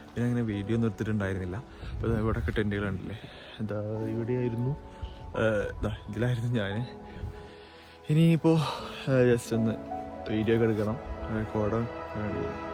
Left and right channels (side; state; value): both; identical; correlation 1.00